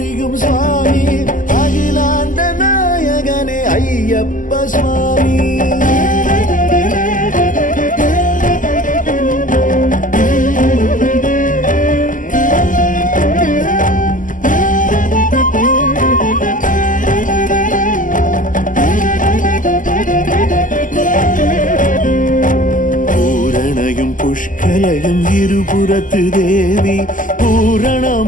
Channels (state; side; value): late; right; 0.38 ms